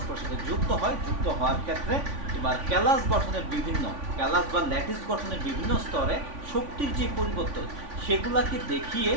সাথে যুক্ত হয়, যুক্ত হওয়ার ক্ষেত্রে তোমার ক্যালাস গঠনের বিভিন্ন, ক্যালাস বা ল্যাটিস গঠনের বিভিন্ন স্তরে শক্তির যে পরিবর্তন সেগুলাকে দেখিয়ে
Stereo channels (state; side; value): late; left; 3.5 ms